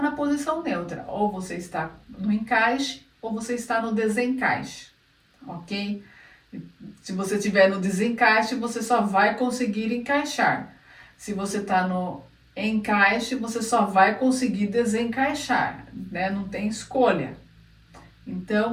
posição neutra. Ou você está no encaixe, ou você está no desencaixe, ok? Se você estiver no desencaixe, você só vai conseguir encaixar. Se você está no encaixe, você só vai conseguir desencaixar, né? Não tem escolha.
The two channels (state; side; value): identical; both; correlation 1.00